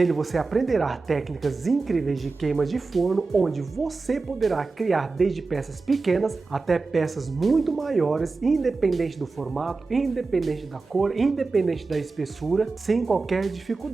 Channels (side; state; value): left; quieter; 4.0 dB